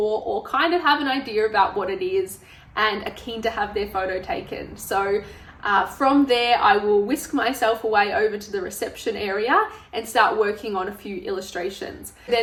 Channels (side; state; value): both; identical; correlation 1.00